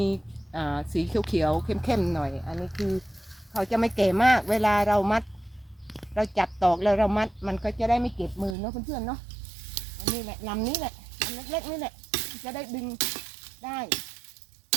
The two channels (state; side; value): drops out; left; at 8.6 s